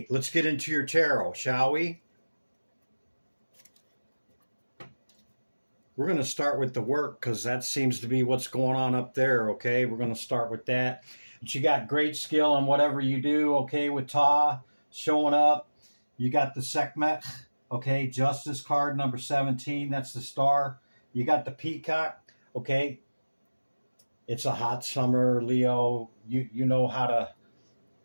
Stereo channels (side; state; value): both; inverted; correlation -1.00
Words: let's get into your tarot, shall we? We're going to start with the work because that seems to be what's going on up there, okay? We're going to start with that. But you got great skill in whatever you do, okay, with Ta showing up. You got the Sehkmet, okay, Justice card, number 17. That's the star. You got the Peacock, okay? It's a hot summer, Leo. You know how to